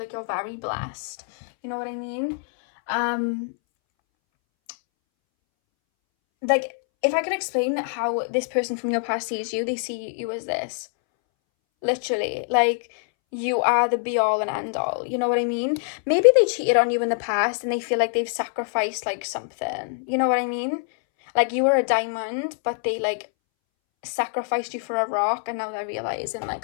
you're very blessed. You know what I mean? Like, if I could explain how this person from your past sees you, they see you as this. Literally, like, you are the be all and end all. You know what I mean? Maybe they cheated on you in the past and they feel like they've sacrificed, like, something. You know what I mean? Like, you were a diamond, but they, like, sacrificed you for a rock, and now they're realizing,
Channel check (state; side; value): silent; right; 62 dB below the other